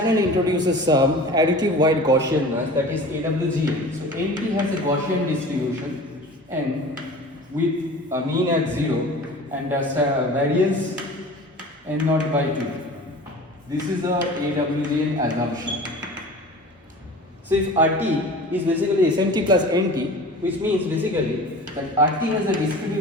introduces some additive wide Gaussian noise, that is AWGN. So NT has a Gaussian distribution N with a mean at 0 and a variance N0 by 2. This is the AWGN assumption. So if RT is basically SMT plus NT, which means basically that RT has a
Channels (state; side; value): normal; both; correlation 0.39